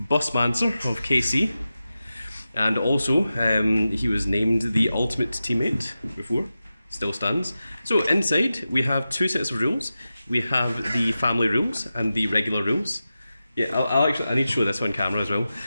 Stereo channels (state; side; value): inverted; both; correlation -0.93